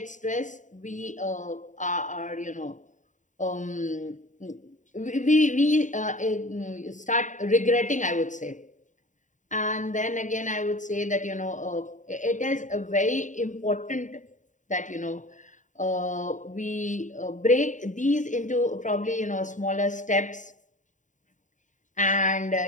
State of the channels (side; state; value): right; late; 0.36 ms